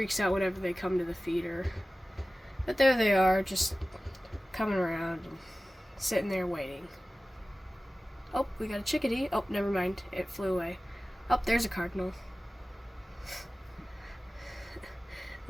out whenever they come to the feeder. But there they are, just coming around and sitting there waiting. Oh, we got a chickadee. Oh, never mind. It flew away. Oh, there's a cardinal.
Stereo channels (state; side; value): normal; both; correlation 0.96